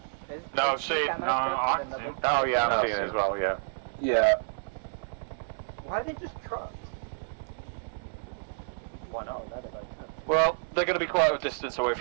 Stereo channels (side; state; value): left; silent; digital silence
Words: No, see, no, oh yeah, I'm seeing it as well, yeah. Yeah. Why are they just trucks? Why not? Well, they're going to be quite a distance away